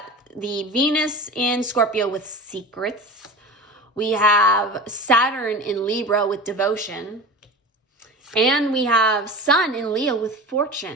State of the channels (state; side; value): normal; both; correlation 0.32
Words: the Venus in Scorpio with secrets. We have Saturn in Libra with devotion. And we have Sun in Leo with